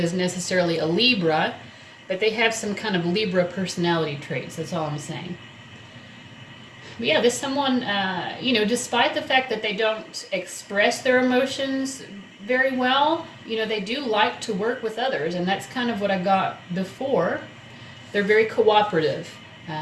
necessarily a Libra, but they have some kind of Libra personality traits. That's all I'm saying. But yeah, this someone, despite the fact that they don't express their emotions very well, they do like to work with others, and that's kind of what I got before. They're very cooperative.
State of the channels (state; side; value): identical; both; correlation 1.00